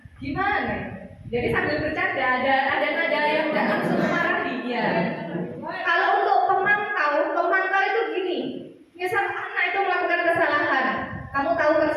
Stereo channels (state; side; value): identical; both; correlation 1.00